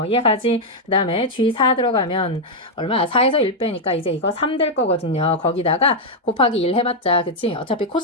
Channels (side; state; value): both; normal; correlation -0.01